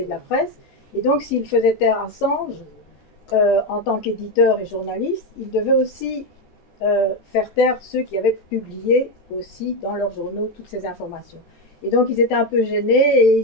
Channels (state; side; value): late; right; 14 ms